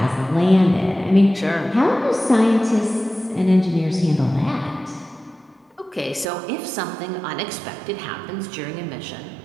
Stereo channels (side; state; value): left; drops out; at 6.2 s